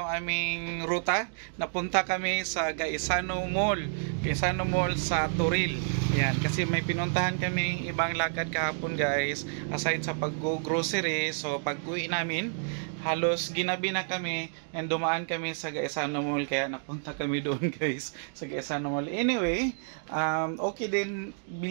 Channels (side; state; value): left; silent; digital silence